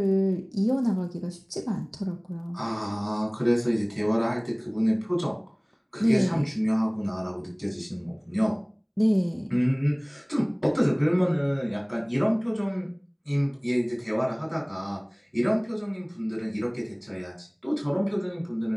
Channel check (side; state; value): both; identical; correlation 1.00